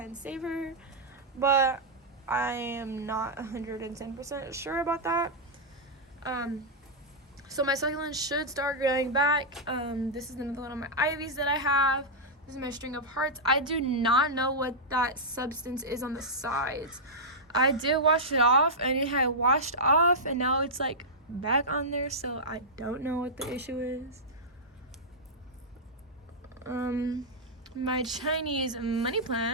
save her, but I am not 110% sure about that. So my succulents should start growing back. This is another one of my ivies that I have. This is my string of hearts. I do not know what that substance is on the sides. I did wash it off, and it had washed off, and now it's like back on there, so I don't know what the issue is. My Chinese money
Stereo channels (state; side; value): normal; both; correlation -0.08